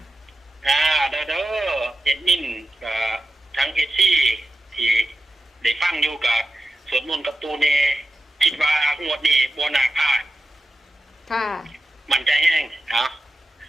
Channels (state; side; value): normal; both; correlation 0.92